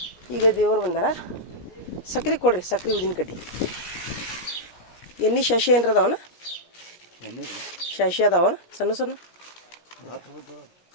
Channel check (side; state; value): right; late; 17 ms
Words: ಈಗ ದೇವ್ರು ಬಂದಾರ. ಸಕ್ರೆ ಕೊಡ್ರಿ. ಸಕ್ರೆ ಉದಿನ ಕಡ್ಡಿ ಎಣ್ಣೆ ಶಶಿ ಏನ್ರ ಅದಾವನ? ಶಶಿ ಅದಾವನ ಸಣ್ಣ ಸಣ್ಣ?